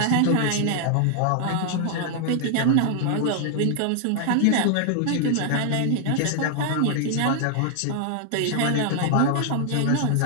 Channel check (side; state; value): both; different; correlation 0.00